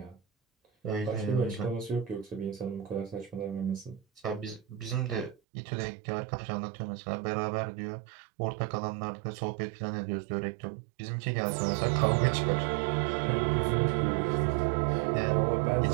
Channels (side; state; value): left; drops out; at 5.4 s